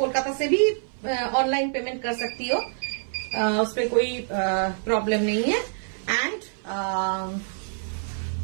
से भी ऑनलाइन पेमेंट कर सकती हो, उस पर कोई प्रॉब्लम नहीं है। And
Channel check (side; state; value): left; silent; 57 dB below the other